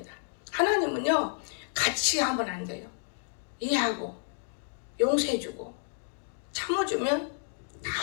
하나님은요 같이 하면 안 돼요. 이해하고 용서해주고 참아주면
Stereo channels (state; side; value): silent; right; 57 dB below the other